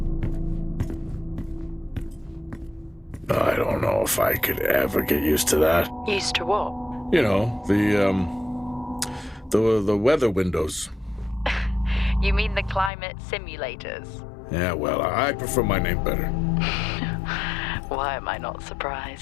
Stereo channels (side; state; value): right; drops out; at 12.9 s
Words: I don't know if I could ever get used to that. Used to what? You know, the weather windows. You mean the climate simulators? Yeah, well, I prefer my name better. Why am I not